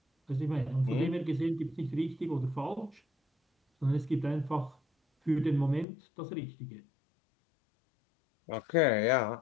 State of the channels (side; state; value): right; drops out; at 5.9 s